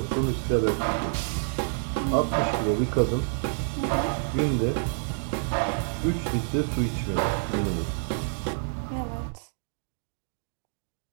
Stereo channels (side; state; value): left; silent; digital silence